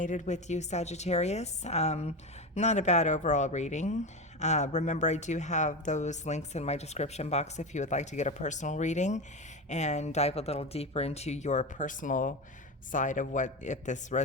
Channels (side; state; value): both; normal; correlation 0.20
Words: with you, Sagittarius. Not a bad overall reading. Remember, I do have those links in my description box if you would like to get a personal reading and dive a little deeper into your personal side of what, if this